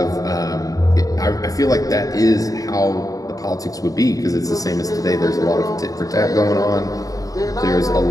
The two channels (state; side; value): late; right; 0.17 ms